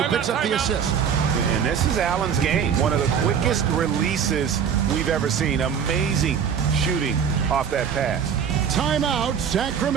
who picks up the assist. And this is Allen's game. One of the quickest releases we've ever seen. Amazing shooting off that pass. Timeout,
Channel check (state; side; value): quieter; left; 7.5 dB